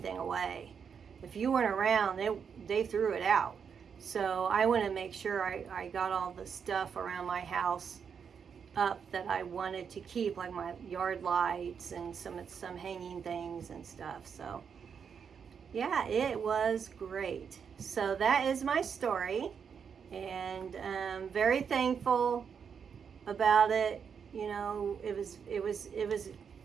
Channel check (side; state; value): left; quieter; 6.8 dB